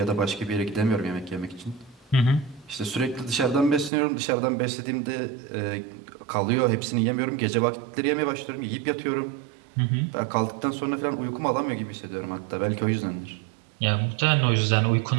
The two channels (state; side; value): drops out; left; at 3.9 s